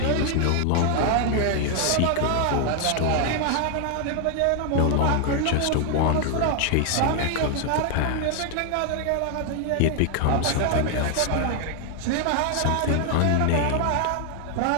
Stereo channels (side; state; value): both; different; correlation 0.00